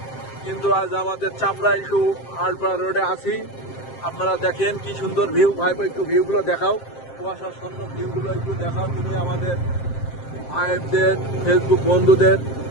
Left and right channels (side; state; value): right; late; 7.6 ms